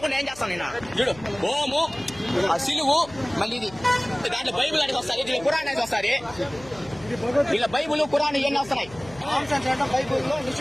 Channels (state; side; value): noise; left; hum, 20 dB below the sound